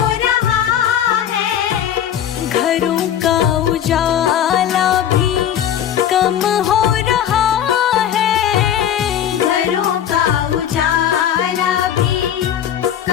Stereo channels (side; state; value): right; quieter; 10.0 dB